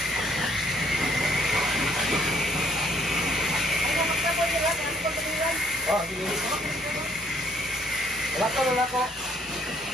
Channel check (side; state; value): both; normal; correlation 0.64